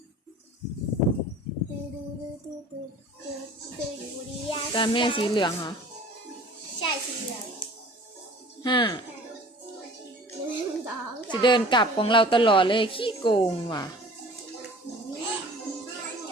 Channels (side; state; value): both; normal; correlation 0.45